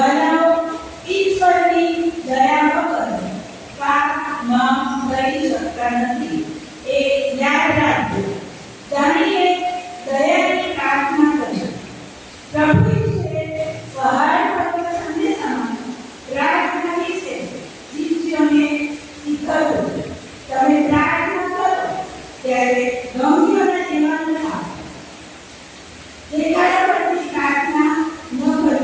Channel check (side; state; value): both; identical; correlation 1.00